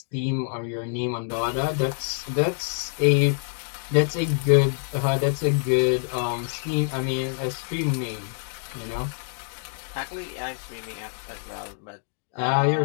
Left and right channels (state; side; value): silent; right; digital silence